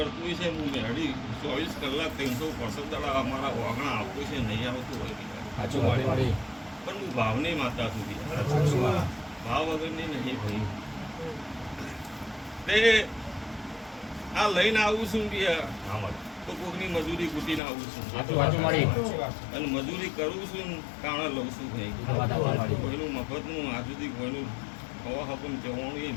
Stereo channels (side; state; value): right; drops out; at 17.6 s